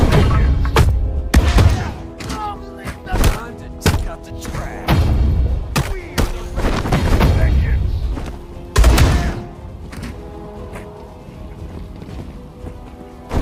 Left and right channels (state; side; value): identical; both; correlation 1.00